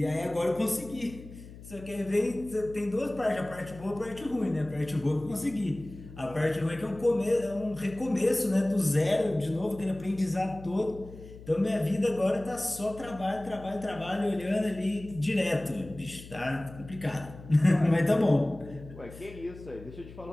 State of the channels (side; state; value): left; noise; hum, 16 dB below the sound